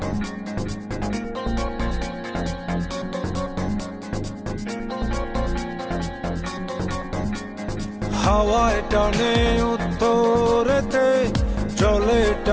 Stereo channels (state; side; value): identical; both; correlation 1.00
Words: হাওয়ায় টানে উত্তরেতে, জলে